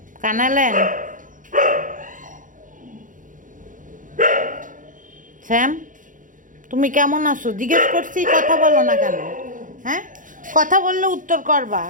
কানালেন শ্যাম, তুমি কেমন আছো জিজ্ঞেস করছি, কথা বলো না কেন? হ্যাঁ, কথা বললে উত্তর করবা।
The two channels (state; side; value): late; left; 0.38 ms